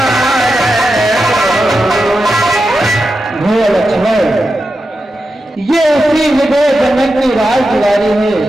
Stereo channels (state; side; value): normal; both; correlation 0.89